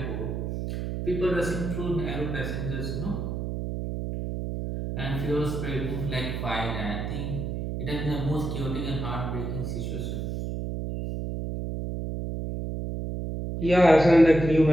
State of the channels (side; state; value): right; noise; hum, 4 dB below the sound